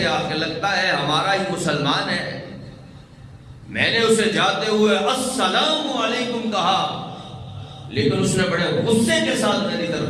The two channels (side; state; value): both; identical; correlation 1.00